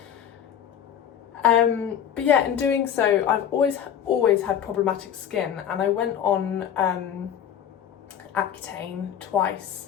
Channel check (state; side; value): quieter; right; 9.3 dB